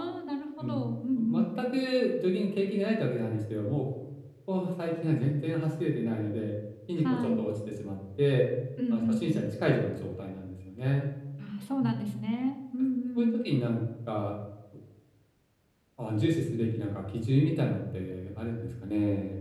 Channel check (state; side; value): identical; both; correlation 1.00